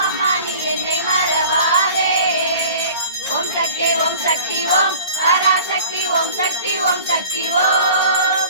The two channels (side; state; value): both; inverted; correlation -0.44